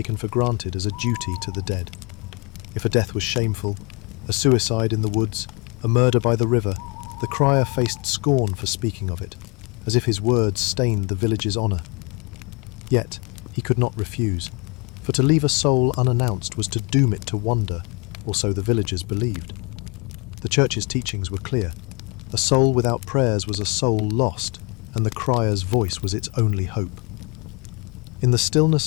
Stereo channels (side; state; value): right; quieter; 31.3 dB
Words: for granted as a duty to the dead. If a death was shameful, a suicide in the woods, a murder by the river, the crier faced scorn for speaking of it, as if his words stained the village's honour. Yet, he could not refuse, for to leave a soul unannounced was to doom it to wander, or so the villagers believed. The church's teachings were clear. A soul without prayers was a soul lost, and the crier's voice was its only hope. In the